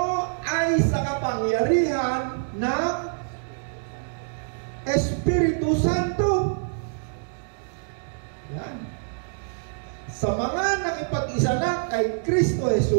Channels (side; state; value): left; silent; digital silence